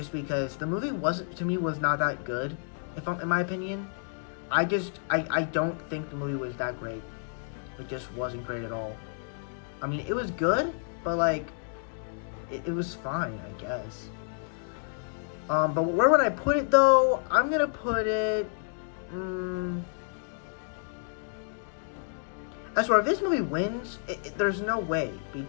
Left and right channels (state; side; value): silent; right; digital silence